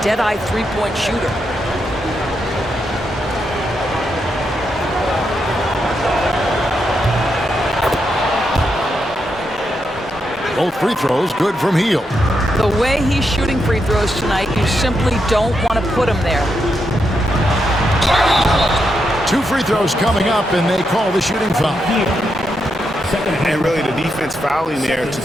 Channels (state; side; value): normal; both; correlation 0.83